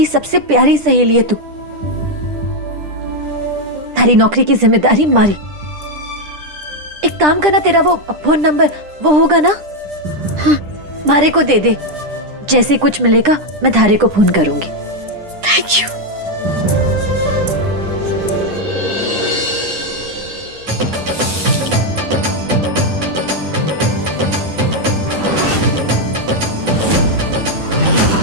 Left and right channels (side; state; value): left; late; 10 ms